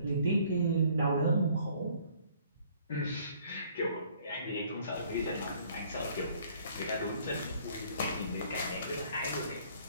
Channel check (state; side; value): inverted; both; correlation -0.59